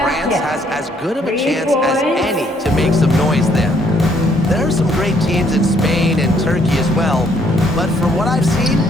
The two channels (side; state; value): both; normal; correlation 0.67